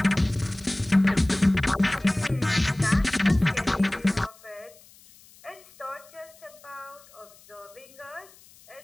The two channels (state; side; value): noise; left; hiss, 25 dB below the sound